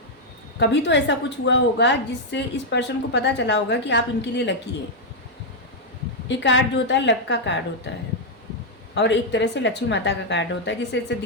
कभी तो ऐसा कुछ हुआ होगा जिससे इस पर्सन को पता चला होगा कि आप इनके लिए लकी है। ये कार्ड जो होता है लक का कार्ड होता है और एक तरह से लक्ष्मी माता का कार्ड होता है, जिससे ऐसे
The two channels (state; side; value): normal; both; correlation -0.02